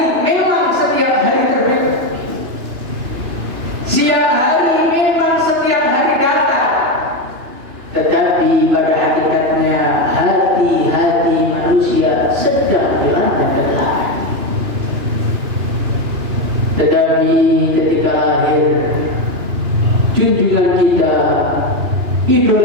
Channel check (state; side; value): late; left; 2.9 ms